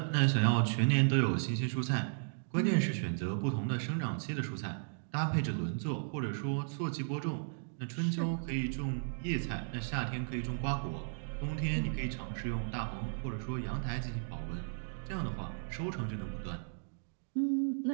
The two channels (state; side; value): silent; left; digital silence